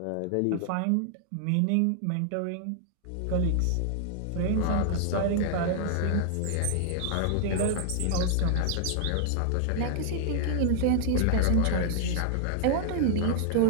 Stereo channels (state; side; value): different; both; correlation -0.01